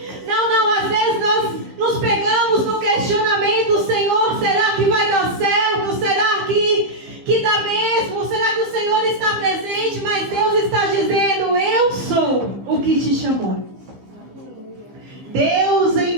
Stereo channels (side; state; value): left; late; 15 ms